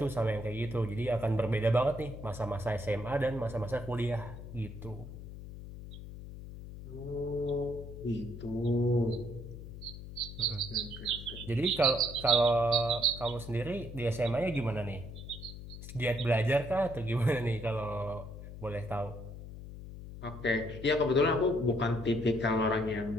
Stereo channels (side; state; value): left; noise; hum, 12 dB below the sound